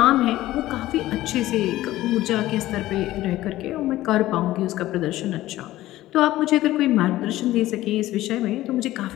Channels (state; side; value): quieter; right; 15.6 dB